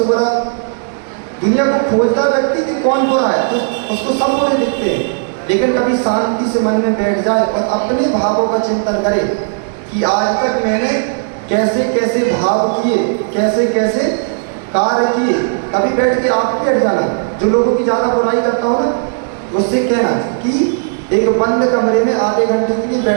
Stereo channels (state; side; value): silent; left; digital silence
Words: बुरा दुनिया को खोजता व्यक्ति कि कौन बुरा है, तो उसको सब बुरे दिखते हैं। लेकिन कभी शांति से मन में बैठ जाए और अपने भावों का चिंतन करे कि आज तक मैंने कैसे कैसे भाव किए, कैसे कैसे कार्य किए। कभी बैठ के आप बैठ जाना, जो लोगों की ज़्यादा बुराई करता हो ना, उससे कहना कि एक बंद कमरे में आधे घंटे के लिए